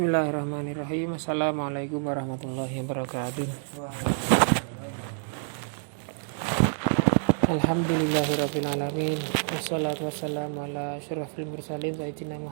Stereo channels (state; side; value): silent; left; digital silence